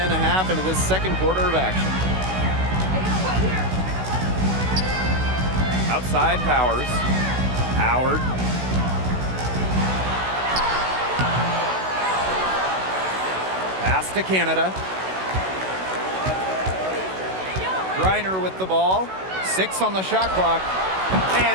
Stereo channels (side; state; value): left; late; 16 ms